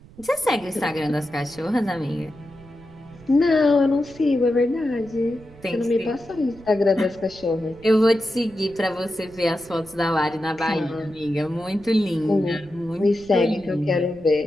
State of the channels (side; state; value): right; noise; rumble, 23 dB below the sound